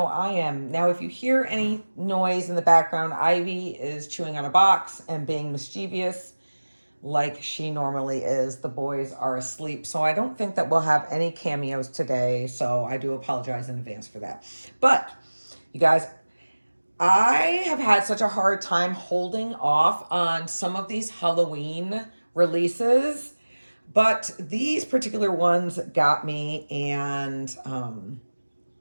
I am. Now, if you hear any noise in the background, Ivy is chewing on a box and being mischievous like she normally is. The boys are asleep, so I don't think that we'll have any cameos today. So I do apologize in advance for that. But you guys, I have had such a hard time holding off on some of these Halloween releases, but these particular ones got me, and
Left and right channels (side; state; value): both; inverted; correlation -1.00